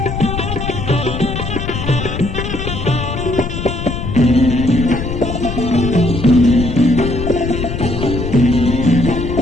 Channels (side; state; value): left; noise; rumble, 5 dB below the sound